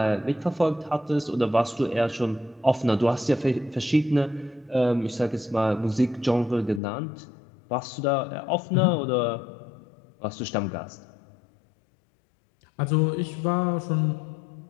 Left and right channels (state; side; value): drops out; right; at 6.8 s